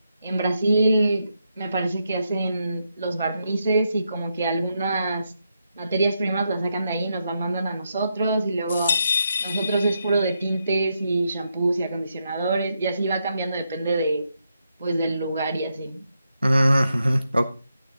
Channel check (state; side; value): inverted; both; correlation -0.82